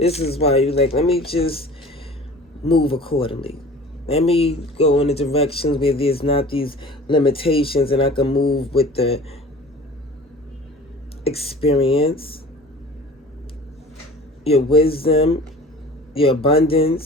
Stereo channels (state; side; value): normal; both; correlation 0.42